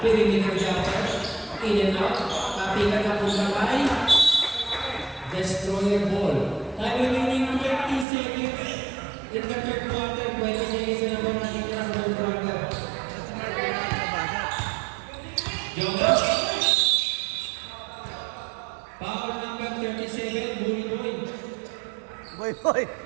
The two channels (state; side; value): drops out; left; at 8.1 s